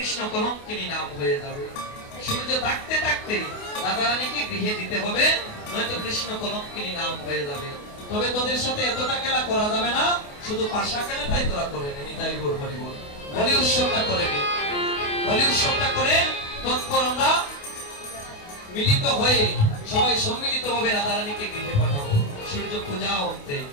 কলঙ্কিনী নাম হয়ে যাবে। সূর্য থাকতে থাকতে রাধারানীকে গৃহে দিতে হবে, নয়তো কৃষ্ণ কলঙ্কিনী নাম হয়ে যাবে। তবে তোদের সাথে এতটা খেলা করা যাবে না, শুধু পাশা খেলাটাই তোরা করে নে। নিতাই গৌর হরি বল। বলি উৎসবটা করে নে, বলি উৎসবটা করে তৎপর আমরা মিলিত হয়ে সবাই সম্মিলিত ভাবে রাধারানীকে গৃহে পাঠাবো। সূর্য পূজা অন্তে,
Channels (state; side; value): late; right; 28 ms